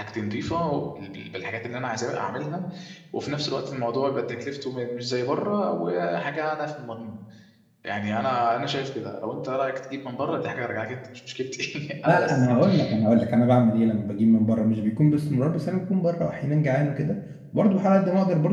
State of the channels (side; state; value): both; identical; correlation 1.00